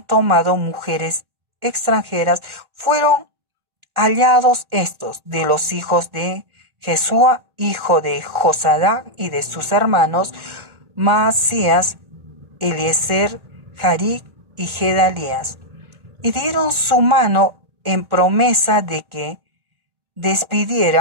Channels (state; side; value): late; left; 1.4 ms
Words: tomado mujeres extranjeras. Fueron hallados estos de los hijos de Jesúa, hijo de Josadac, y de sus hermanos Maasías, Eliezer, Jaric y Gedalías, y dieron su mano en promesa de que